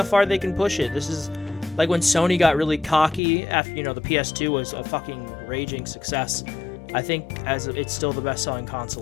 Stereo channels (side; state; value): right; drops out; at 3.2 s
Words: far they can push it. This is like when Sony got really cocky after the PS2 was a fucking raging success. I think it's still the best-selling